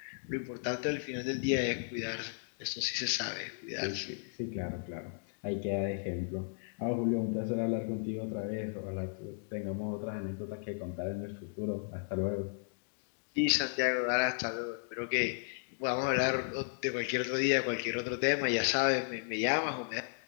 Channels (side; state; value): right; silent; digital silence